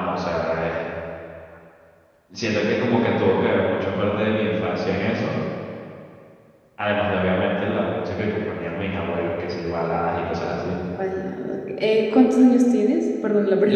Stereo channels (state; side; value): identical; both; correlation 1.00